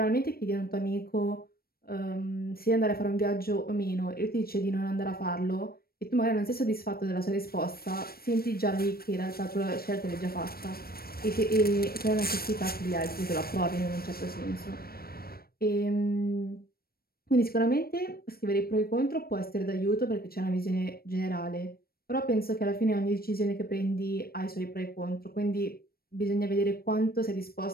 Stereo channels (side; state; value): right; late; 0.44 ms